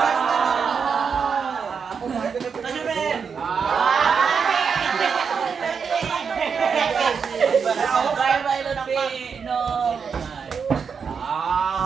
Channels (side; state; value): left; quieter; 6.1 dB